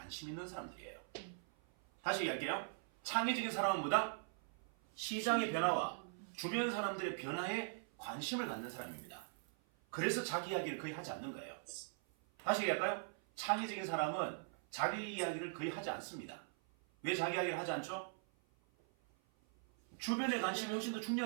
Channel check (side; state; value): left; silent; 50 dB below the other